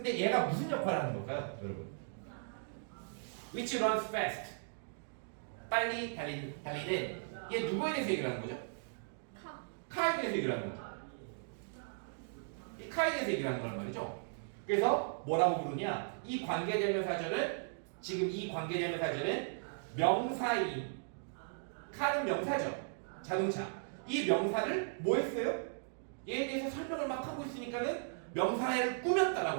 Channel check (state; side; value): silent; left; digital silence